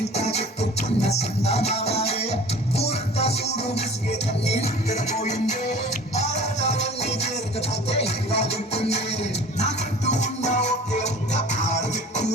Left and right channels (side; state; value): both; normal; correlation 0.45